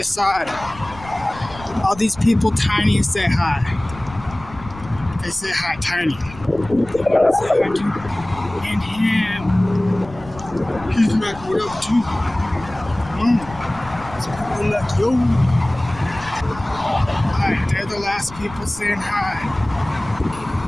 side. All these people tiny say hi. They say hi tiny. They want to say hi too. And him. He's like, what up too? It's people like, yo. Alright, they're the last people saying hi.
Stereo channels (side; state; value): left; noise; rumble, 17 dB below the sound